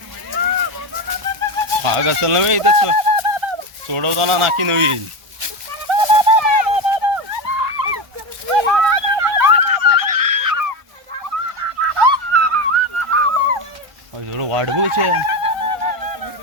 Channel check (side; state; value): left; late; 1.3 ms